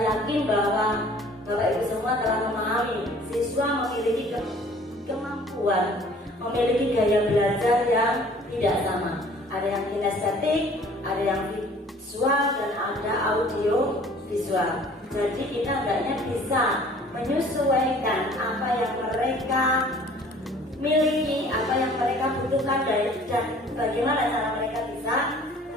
yakin bahwa Bapak Ibu semua telah memahami siswa memiliki kemampuan, memiliki gaya belajar yang tidak sama. Ada yang kinestetik, ada yang visual, dan ada audio visual. Jadi kita hendaknya bisa menyesuaikan apa yang mereka miliki, apa yang mereka butuhkan, dan bagaimana cara mereka bisa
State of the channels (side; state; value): both; normal; correlation 0.52